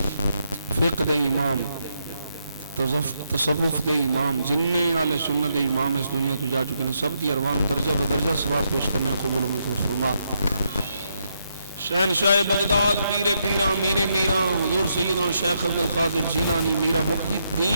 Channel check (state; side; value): inverted; both; correlation -0.79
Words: فقہ دے امام تصوف دے امام جننے آل سنت دے امام اس دنیا تو جا چکے ہیں، سب دی ارواح درجہ بدرجہ ثواب پیش کرنے قبول و منظور فرما، شہنشاہ بغداد پیر پیراں میر میراں حضور سیدنا شیخ عبد القادر جیلانی میرا محی